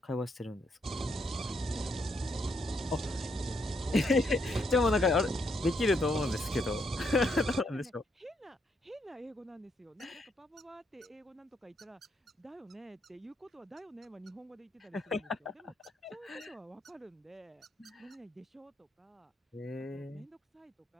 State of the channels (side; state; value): both; normal; correlation 0.76